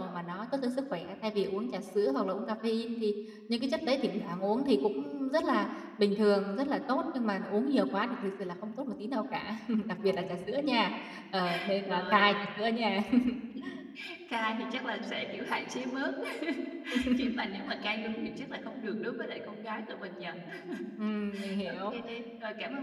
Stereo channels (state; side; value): identical; both; correlation 1.00